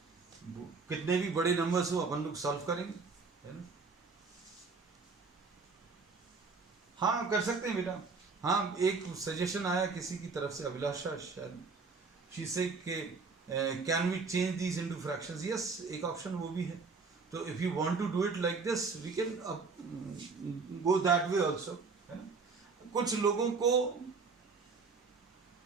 कितने भी बड़े नंबर्स हो अपन लोग सॉल्व करेंगे, है ना। हाँ कर सकते हैं बेटा। हाँ एक सजेशन आया किसी की तरफ से, अभिलाषा शायद, शी से के can we change these into fractions. Yes, एक ऑप्शन वो भी है। तो if you want to do it like this we can go that way also, है ना। कुछ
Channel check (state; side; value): quieter; left; 4.5 dB